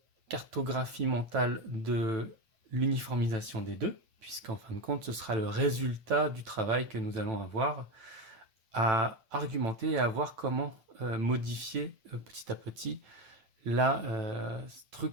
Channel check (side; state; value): left; late; 9.1 ms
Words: cartographie mentale de l'uniformisation des deux, puisqu'en fin de compte, ce sera le résultat du travail que nous allons avoir à argumenter et à voir comment modifier petit à petit la